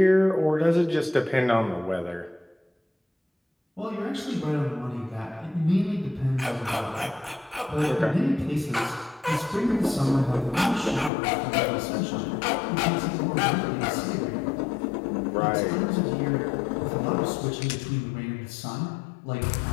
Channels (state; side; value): drops out; right; at 11.1 s